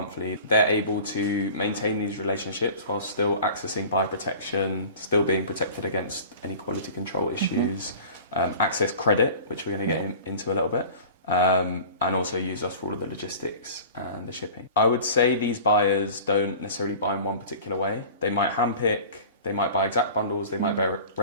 They're able to maintain these relationships while still accessing buyer protection, still being protected against any quality control issues, access credit, which we're going to get into a little bit. And also use us for all of the logistics and the shipping. I would say these buyers don't necessarily buy in one particular way. They might handpick, they might buy exact bundles, they might buy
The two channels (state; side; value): inverted; both; correlation -0.42